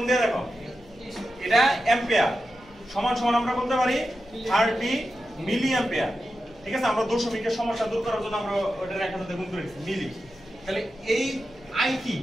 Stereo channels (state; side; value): noise; right; hum, 28 dB below the sound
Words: দিয়ে দেখো। এটা অ্যাম্পিয়ার সমান আমরা বলতে পারি 30 মিলি অ্যাম্পিয়ার, ঠিক আছে? আমরা দশমিকের সমস্যা দূর করার জন্য আমরা ওটা 1000 দিয়ে গুণ করেছি মিলি। তাহলে এই